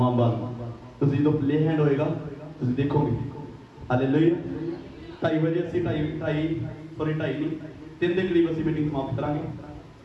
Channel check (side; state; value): both; identical; correlation 1.00